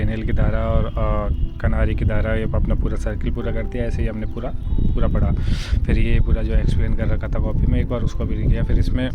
की धारा और कनारी की धारा, ये अपना पूरा सर्किल पूरा करती है। ऐसे ही हमने पूरा पढ़ा। फिर ये पूरा जो एक्सप्लेन कर रखा था कॉपी में, एक बार उसको भी लिख लिया। फिर इसमें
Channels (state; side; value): identical; both; correlation 1.00